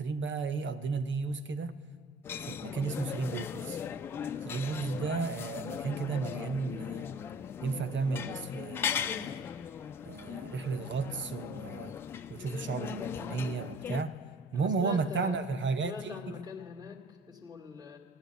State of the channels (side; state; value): both; normal; correlation 0.49